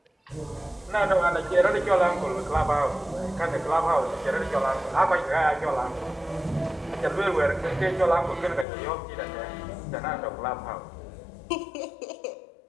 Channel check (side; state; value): right; drops out; at 8.7 s